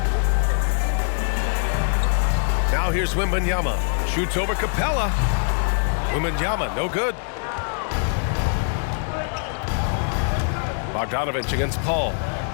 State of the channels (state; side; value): silent; right; 63 dB below the other